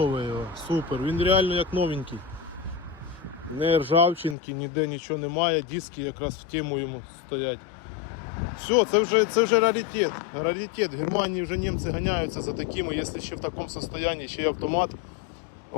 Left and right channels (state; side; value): drops out; right; at 4.4 s